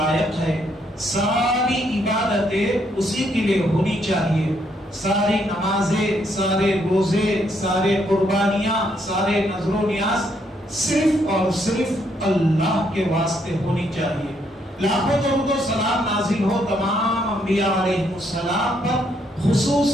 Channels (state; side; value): normal; both; correlation 0.73